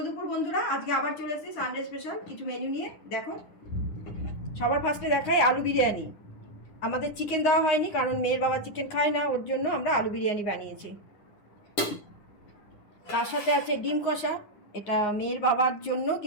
দুপুর বন্ধুরা, আজকে আবার চলে এসেছি সানডে স্পেশাল কিছু মেনু নিয়ে। দেখো, সবার ফার্স্টে দেখাই আলু বিরিয়ানি। আমাদের চিকেন দেওয়া হয়নি, কারণ মেয়ের বাবা চিকেন খায় না, ওর জন্য আমরা আলু বিরিয়ানি বানিয়েছি। তার সাথে আছে ডিম কষা, এটা মেয়ের বাবার জন্য,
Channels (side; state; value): right; late; 10 ms